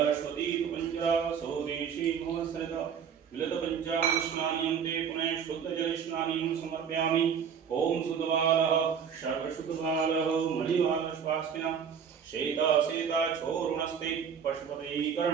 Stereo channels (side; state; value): left; quieter; 7.3 dB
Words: पंचरा शौरेशे मम सरता मिलित पंचामृत स्नानिं ते पुनः शुद्ध जल स्नानिं समर्पयामि। ओम सुतवालः सर्वशुद्धवालः मणिवाल स्वास्तिना शेता शेता छोरुणस्ते पशुपते